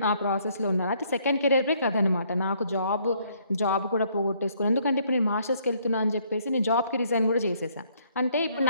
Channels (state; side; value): inverted; both; correlation -0.67